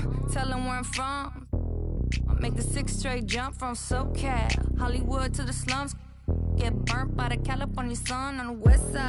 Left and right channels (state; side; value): identical; both; correlation 1.00